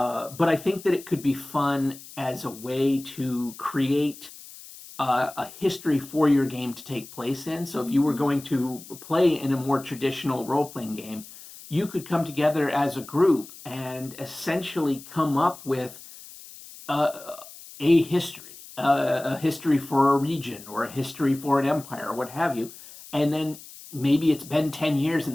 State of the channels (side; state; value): left; noise; hiss, 17 dB below the sound